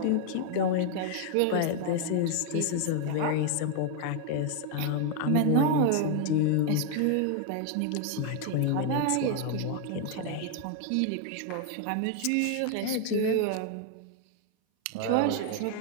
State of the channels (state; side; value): different; both; correlation 0.00